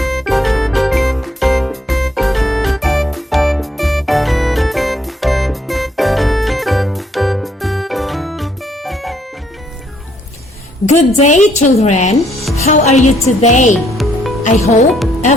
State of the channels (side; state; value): both; normal; correlation 0.69